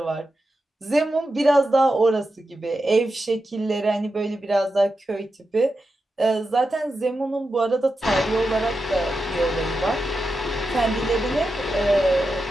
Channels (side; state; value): both; normal; correlation 0.89